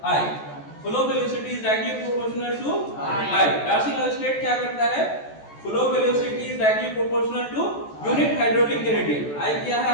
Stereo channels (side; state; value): right; late; 14 ms